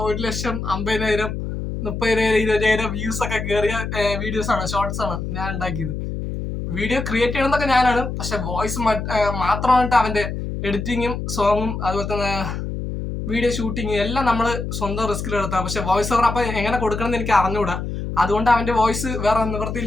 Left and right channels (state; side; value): noise; left; hum, 5 dB below the sound